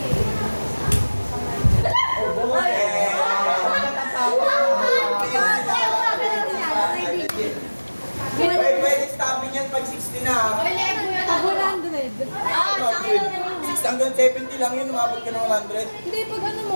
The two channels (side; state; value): both; inverted; correlation -1.00